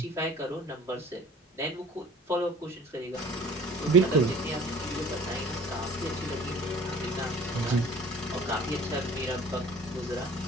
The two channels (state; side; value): normal; both; correlation 0.47